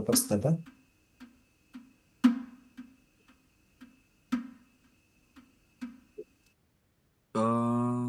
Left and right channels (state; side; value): identical; both; correlation 1.00